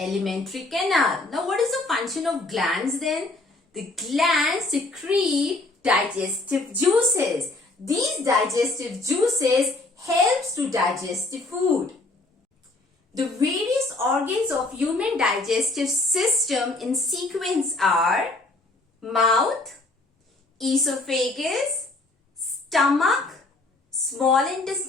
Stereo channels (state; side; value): quieter; right; 3.0 dB